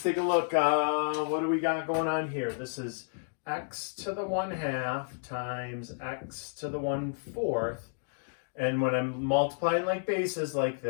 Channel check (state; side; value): silent; right; digital silence